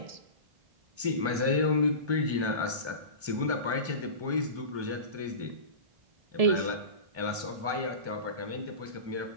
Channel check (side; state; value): left; late; 1.3 ms